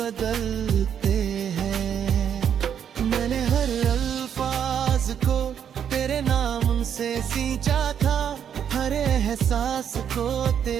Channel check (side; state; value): left; quieter; 8.6 dB